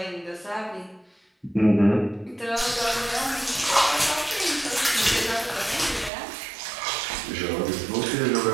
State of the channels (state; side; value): drops out; left; at 6.1 s